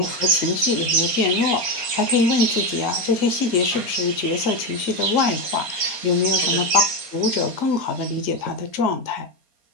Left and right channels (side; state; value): left; late; 4.4 ms